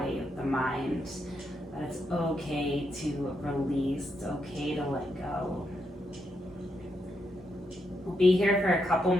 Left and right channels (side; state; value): both; normal; correlation 0.81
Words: the mind, that it's okay to release, it's okay to let go. We'll be here for a couple